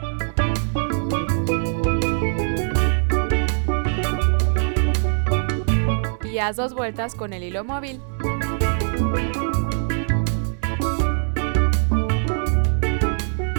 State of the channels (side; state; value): left; silent; 64 dB below the other